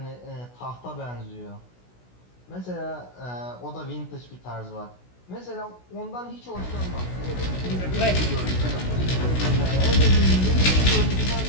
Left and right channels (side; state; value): right; late; 16 ms